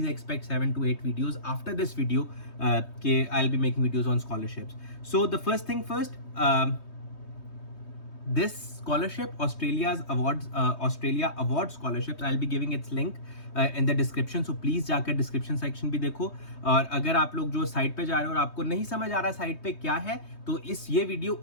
expect 7 to 8 videos after this video. I'll be making videos on scholarships. So the first thing first, this scholarship, Australia Award Scholarships, I'll be giving its link in the description, so please जाकर description section भी देखो. और अगर आप लोग जो साइट पे जा रहे हो और आपको नहीं समझ आ रहा साइट पे क्या है, तो ये वीडियो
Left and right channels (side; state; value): right; late; 3.2 ms